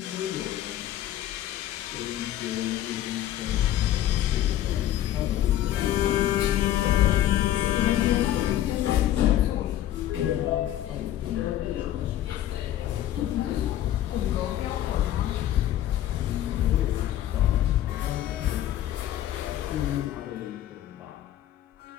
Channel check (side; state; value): right; quieter; 12.5 dB